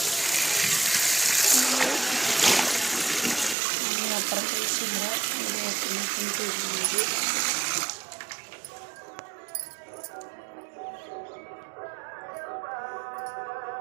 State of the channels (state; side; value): drops out; left; at 3.6 s